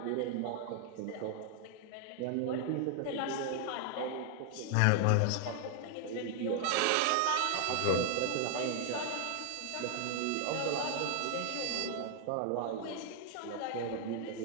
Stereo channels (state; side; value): different; both; correlation 0.00